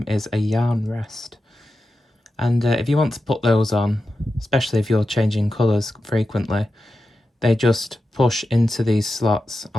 is a yarn rest. And if you want to put those on, especially if you're changing colours frequently, they just push into these slots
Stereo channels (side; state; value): both; normal; correlation 0.91